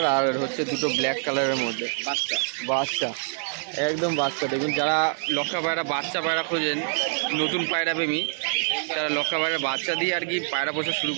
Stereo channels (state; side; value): silent; left; 61 dB below the other